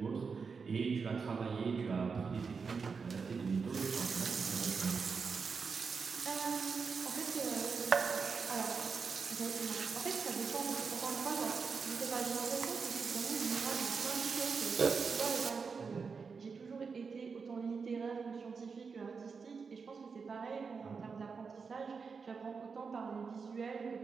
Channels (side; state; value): left; quieter; 5.3 dB